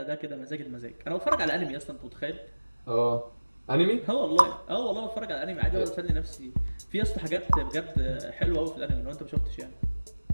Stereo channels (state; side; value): inverted; both; correlation -1.00